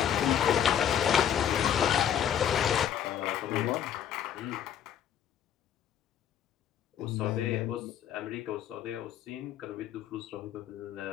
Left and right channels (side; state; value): right; quieter; 9.6 dB